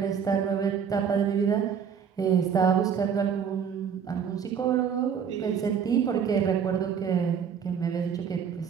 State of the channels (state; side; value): quieter; left; 7.3 dB